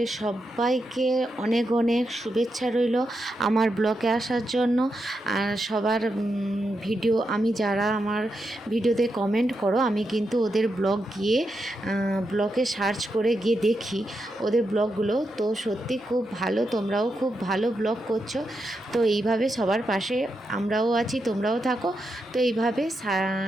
সবাইকে অনেক অনেক শুভেচ্ছা রইল আমার ব্লগে আসার জন্য। আর সবার ভিডিও, আমি যারা আমার ভিডিওতে কমেন্ট করো, আমি কিন্তু ওদের ব্লগ গিয়ে ব্লগে সার্চ করে গিয়ে দেখি ওদের ব্লগগুলো। তো সত্যি খুব ভালো, তোমরাও খুব ভালো ব্লগ করছো। তো এইভাবে সবার পাশে আমরাও আছি, তোমরাও থাকো। তো এইভাবে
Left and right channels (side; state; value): both; normal; correlation 0.85